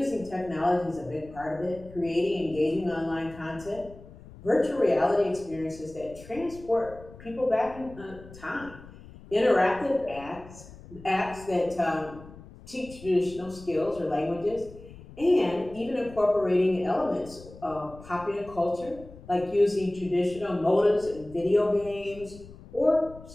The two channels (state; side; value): noise; left; rumble, 18 dB below the sound